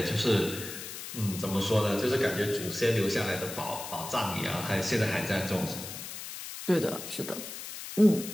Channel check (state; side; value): noise; left; hiss, 9 dB below the sound